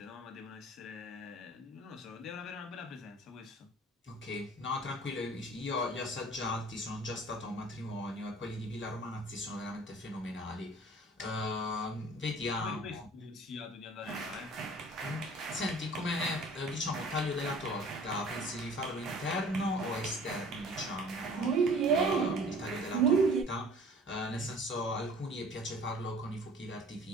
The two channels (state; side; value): normal; both; correlation 0.48